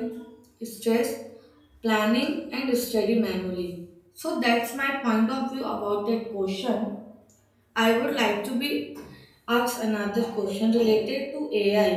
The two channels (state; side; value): identical; both; correlation 1.00